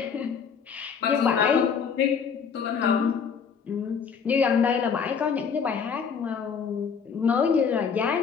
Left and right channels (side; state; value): right; quieter; 6.4 dB